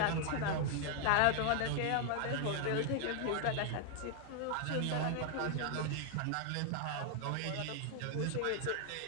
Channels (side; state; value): both; different; correlation 0.00